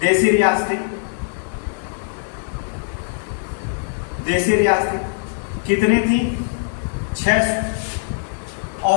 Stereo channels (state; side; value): silent; right; digital silence